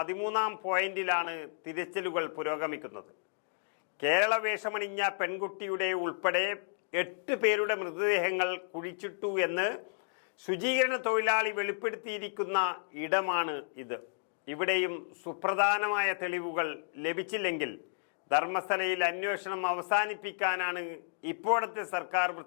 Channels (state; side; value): silent; right; digital silence